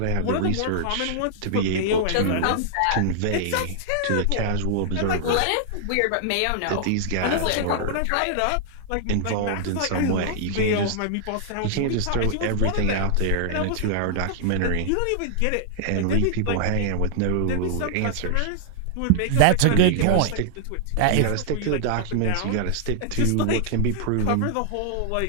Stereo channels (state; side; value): different; both; correlation -0.01